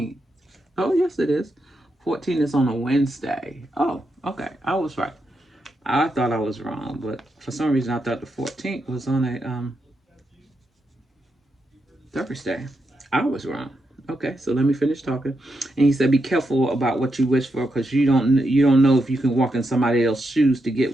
Oh, yes, it is. 14 is on a Wednesday. Oh, okay. I was right. I thought I was wrong, but for some reason I thought the 14th was on a Thursday. I was wrong. Okay, so let me finish talking. And he said, "Be careful about what you wish for, because you don't know if you can walk in somebody else's shoes to get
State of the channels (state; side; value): normal; both; correlation 0.84